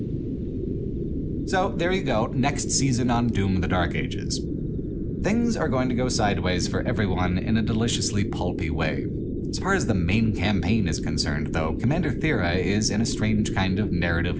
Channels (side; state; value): both; identical; correlation 1.00